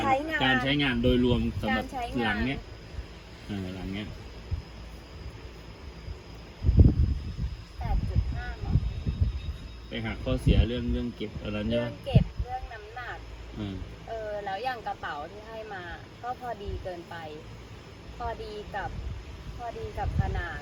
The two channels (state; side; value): identical; both; correlation 1.00